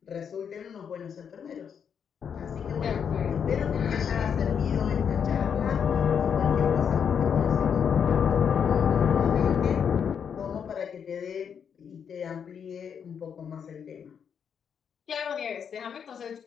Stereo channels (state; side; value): quieter; right; 7.4 dB